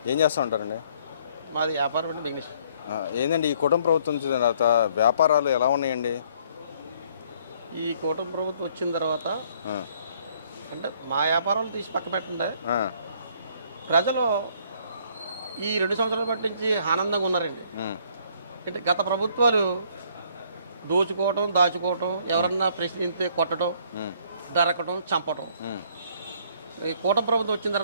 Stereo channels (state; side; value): inverted; both; correlation -0.63